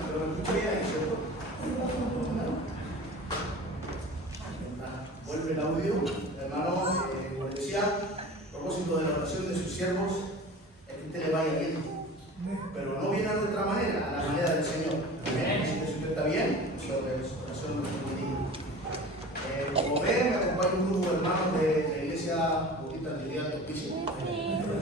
Vuelve el audio, hermano, como decía, a propósito de la oración de sus siervos, es que usted le vaya bien, pero no viene a nuestra manera, a la manera del Señor. Así que si usted está bien, su oración no es muy como ven, me acompaña un grupo de hermanos de la iglesia Bautista Trinidad de Hospicio.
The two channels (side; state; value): both; normal; correlation 0.38